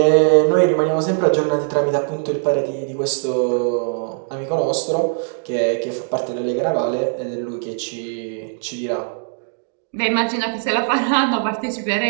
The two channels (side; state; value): left; silent; digital silence